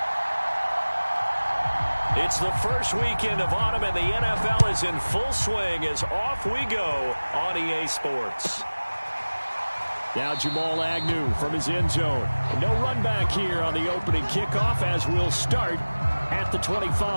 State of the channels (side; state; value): both; inverted; correlation -1.00